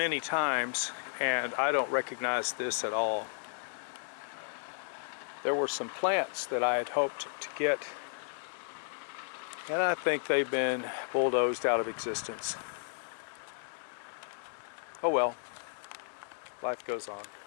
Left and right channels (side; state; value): right; silent; digital silence